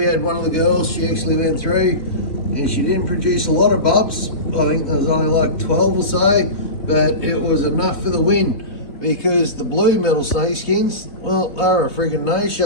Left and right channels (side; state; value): right; late; 3.1 ms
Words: had one of the girls, she actually went through and she didn't produce a lot of bubs. I think there was only like 12 or so, but it was enough for the win because the blue metal snakeskins, well, they were a friggin'